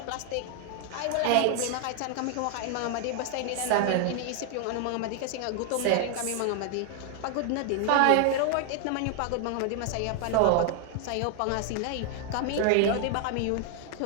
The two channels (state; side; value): different; both; correlation 0.00